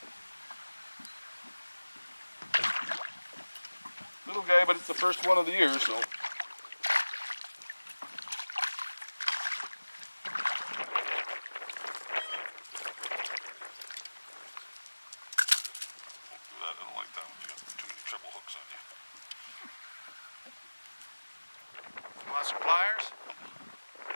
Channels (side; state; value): both; inverted; correlation -1.00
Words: Little guy, but it's the first one of the year, so. I don't like that when you got too many triple hooks on you. You want some pliers?